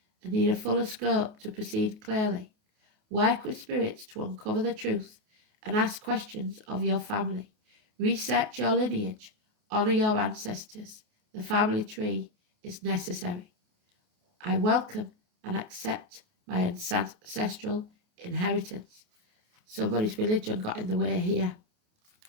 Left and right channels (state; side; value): late; left; 28 ms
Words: and need a fuller scope to proceed clearly. Work with spirits to uncover the truth and ask questions of your family. Research your lineage. Honour your ancestors. The family tree is necessary. I welcome and accept my ancestral inheritance. Somebody's religion got in the way here.